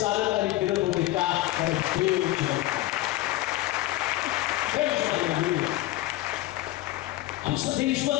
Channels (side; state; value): right; quieter; 16.8 dB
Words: आणि फिरत होते. का? आमचं देव